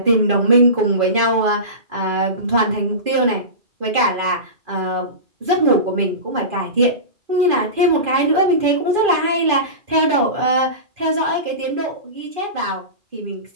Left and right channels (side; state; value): left; late; 2.5 ms